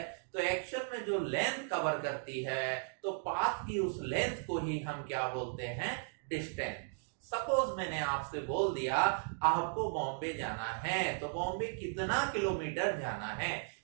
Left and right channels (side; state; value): left; silent; digital silence